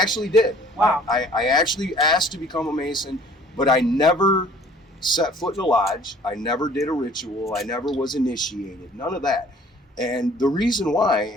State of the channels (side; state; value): both; normal; correlation 0.53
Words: did. Wow. I actually asked to become a Mason, but I never set foot in a lodge. I never did a ritual. I never was initiated. None of that. And the reason why,